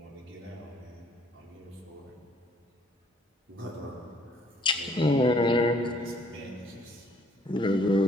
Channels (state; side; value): normal; both; correlation 0.61